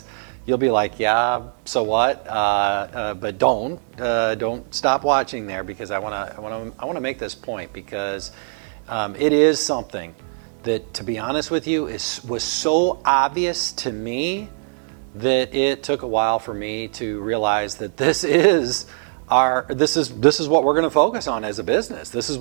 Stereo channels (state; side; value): silent; left; digital silence